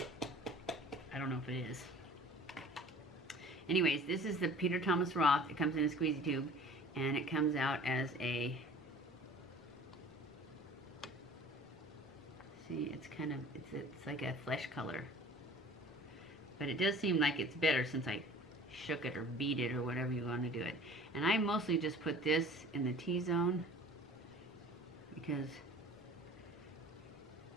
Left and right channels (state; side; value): normal; both; correlation 0.46